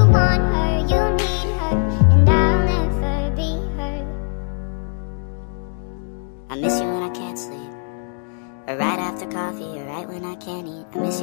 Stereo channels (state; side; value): silent; right; digital silence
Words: want her, you need her, and I'll never be her. I miss you when I can't sleep, or right after coffee, or right when I can't eat. I miss